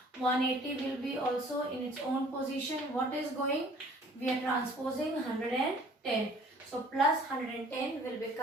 180 will be also in its own position. What is going? We are transposing 110. So plus 110 will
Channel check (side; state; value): both; normal; correlation 0.54